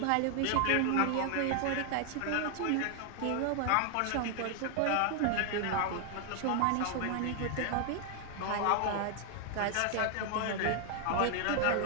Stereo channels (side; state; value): both; different; correlation 0.00